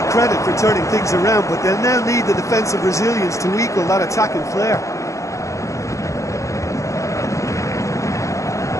credit for turning things around, but they'll now need the defensive resilience to equal that attacking flair.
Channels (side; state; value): right; late; 0.15 ms